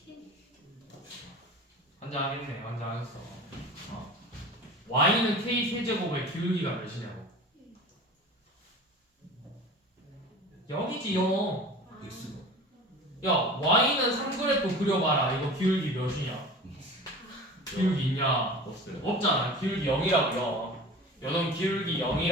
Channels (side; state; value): both; normal; correlation 0.37